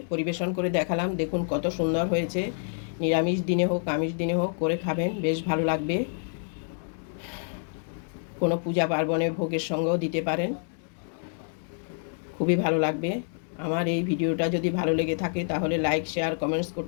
পরিবেশন করে দেখালাম। দেখুন কত সুন্দর হয়েছে। নিরামিষ দিনে হোক আমিষ দিনে হোক করে খাবেন, বেশ ভালো লাগবে। কোনো পূজা পার্বণে ভোগের সঙ্গেও দিতে পারেন, খুবই ভালো লাগবে। আমার এই ভিডিওটা যদি ভালো লেগে থাকে তাহলে লাইক, শেয়ার, কমেন্টস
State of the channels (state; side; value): silent; right; digital silence